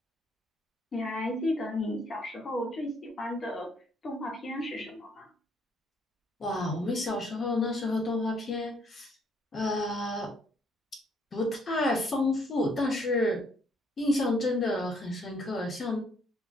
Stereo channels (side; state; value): both; normal; correlation 0.67